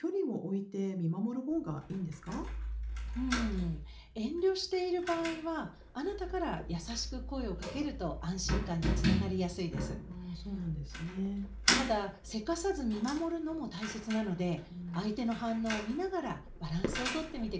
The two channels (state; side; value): identical; both; correlation 1.00